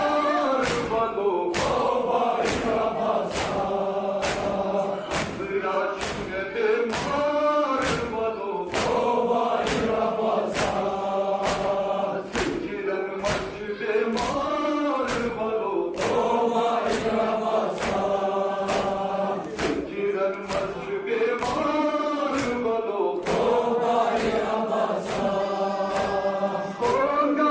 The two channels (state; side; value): identical; both; correlation 1.00